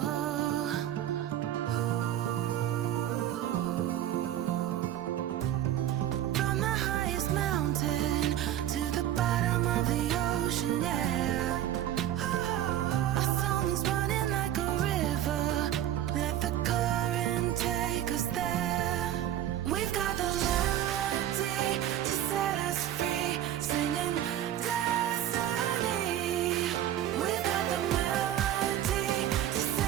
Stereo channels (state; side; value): quieter; left; 11.9 dB